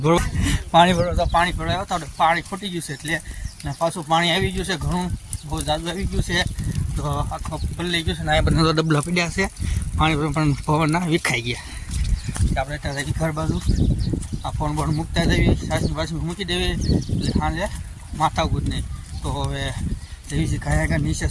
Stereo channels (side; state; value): both; identical; correlation 1.00